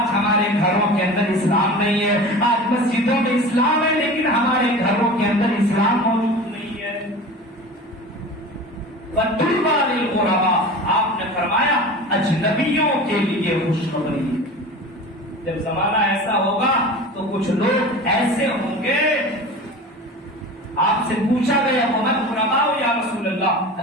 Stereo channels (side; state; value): both; normal; correlation 0.35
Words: ہمارے گھروں کے اندر اسلام نہیں ہے، آج مسجدوں میں اسلام ہے لیکن ہمارے گھروں کے اندر اسلام موجود نہیں ہے۔ وَطُوبَى لِلْغُرَبَاء، آپ نے فرمایا اجنبیوں کے لیے خوشخبری۔ جب زمانہ ایسا ہوگا تو کچھ لوگ ایسے ہوں گے، آپ سے پوچھا گیا وَمَنْ غُرَبَاءُ یا رسول اللہ،